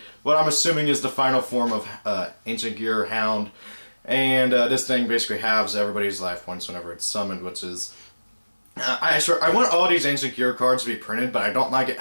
what I'm assuming is the final form of Ancient Gear Hound. And this thing basically halves everybody's life points whenever it's summoned, which is... I want all these Ancient Gear cards to be printed, but I don't like it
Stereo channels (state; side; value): inverted; both; correlation -1.00